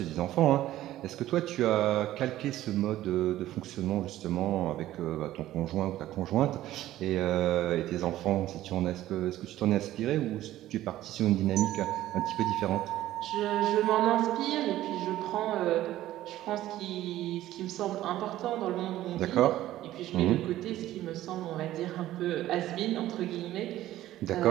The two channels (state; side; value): quieter; left; 14.3 dB